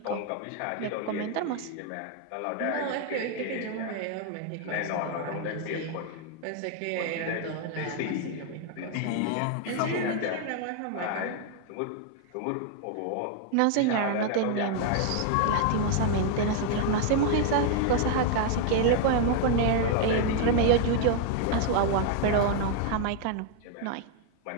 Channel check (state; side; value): different; both; correlation 0.00